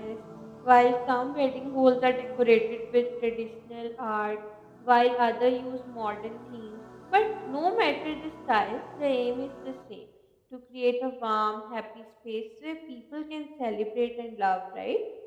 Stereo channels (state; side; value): identical; both; correlation 1.00